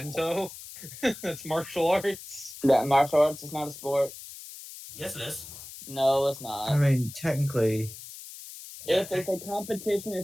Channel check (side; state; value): left; noise; hiss, 14 dB below the sound